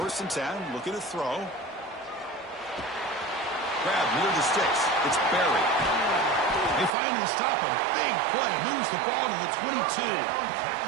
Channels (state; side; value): drops out; left; at 6.9 s